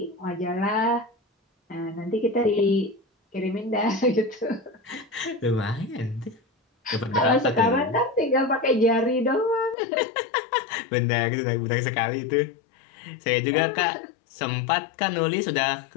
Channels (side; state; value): right; drops out; at 9.8 s